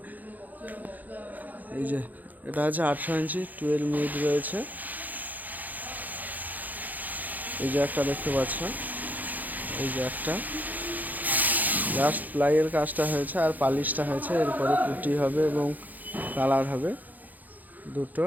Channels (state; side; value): late; left; 0.082 ms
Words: এই যে এটা আছে 18 ইঞ্চি 2 এর মিড রয়েছে। এই যে একটা দেখতে পাচ্ছ, এই যে একটা জাস্ট প্লাইয়ের কাজটা হয়েছে আর পালিশটা হয়েছে, এরপরে পুটি হবে এবং কালার হবে দুটো।